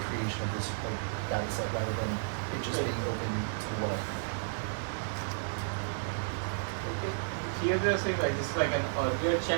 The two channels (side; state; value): left; silent; digital silence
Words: creation of this data set rather than it just being open to the web. Here they're saying like this is like an earlier